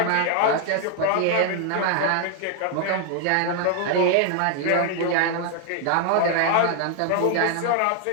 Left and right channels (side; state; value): both; different; correlation 0.00